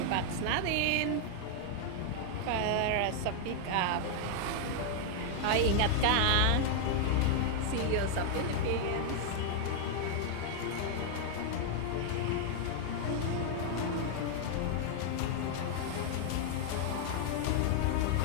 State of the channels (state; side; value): different; both; correlation 0.00